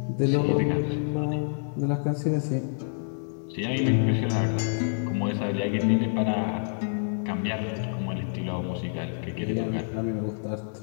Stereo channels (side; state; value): right; silent; digital silence